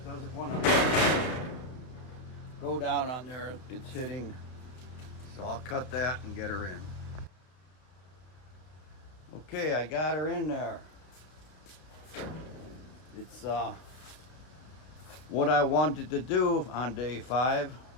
doesn't want to go down on there. It's hitting. So I'll cut that and get her in. Okay, I got her in there. It's what I wanted to do on day 5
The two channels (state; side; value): late; right; 32 ms